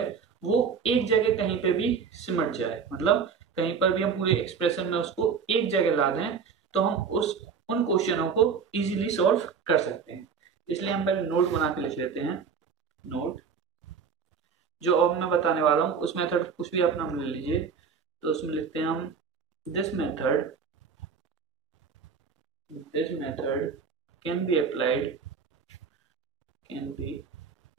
वो एक जगह कहीं पे भी सिमट जाए, मतलब कहीं पर भी हम पूरे एक्सप्रेशन में उसको एक जगह ला दें तो हम उन क्वेश्चनों को इजीली सॉल्व कर सकते हैं। इसलिए हम पहले नोट बना के लिख लेते हैं। नोट जो अब मैं बताने वाला हूं उस मेथड कुछ भी अपना ले लीजिए, तो उसमें लिखते हैं हम this method can be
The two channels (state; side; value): quieter; left; 6.1 dB